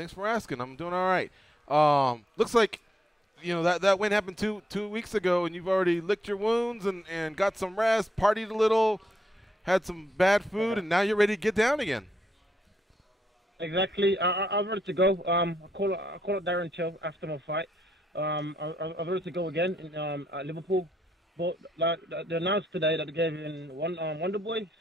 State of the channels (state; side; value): normal; both; correlation 0.78